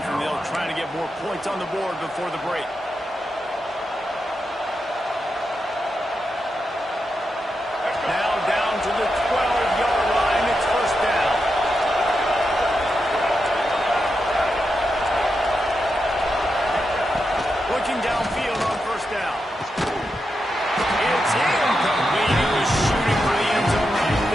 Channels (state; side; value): normal; both; correlation 0.87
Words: and they'll try to get more points on the board before the break. Now down to the 12-yard line. It's first down. Looking downfield on first down. It's incomplete. He was shooting for the end zone right